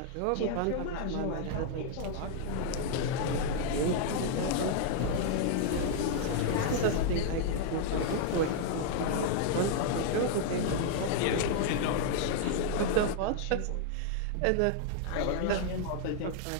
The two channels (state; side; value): different; both; correlation 0.00